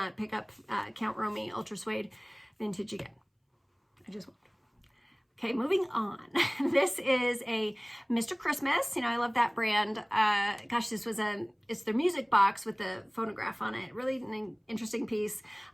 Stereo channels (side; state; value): both; identical; correlation 1.00